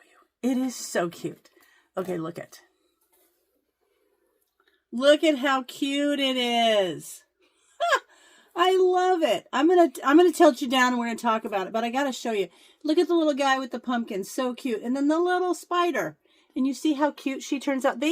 you. It is so cute. Okay, look at how cute it is. I love it. I'm gonna tilt you down and we're gonna talk about it, but I gotta show you. Look at the little guy with the pumpkin, so cute. And then the little spider. And you see how cute she turns out. They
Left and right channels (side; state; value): both; identical; correlation 1.00